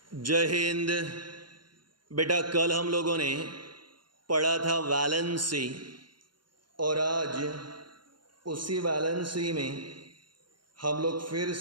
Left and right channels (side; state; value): left; late; 0.71 ms